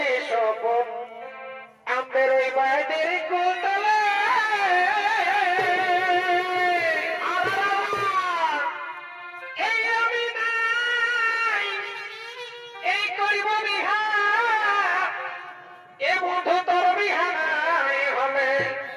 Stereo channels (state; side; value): identical; both; correlation 1.00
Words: স্বপন আমাদের ওই বাইদের কোতলে এই আমি নাই এই করিব বিহা এ বন্ধু তোর বিহা নাই হলে